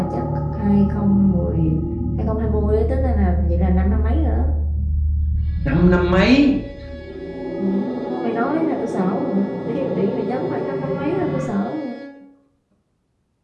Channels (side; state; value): both; identical; correlation 1.00